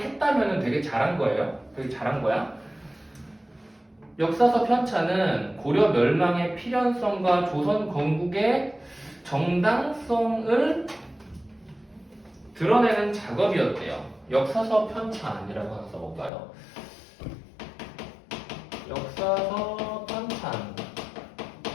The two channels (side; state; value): right; drops out; at 16.3 s